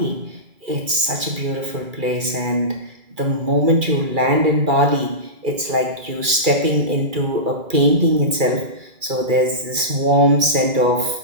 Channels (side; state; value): left; late; 2.4 ms